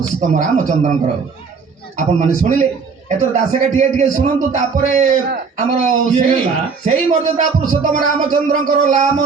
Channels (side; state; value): left; quieter; 5.2 dB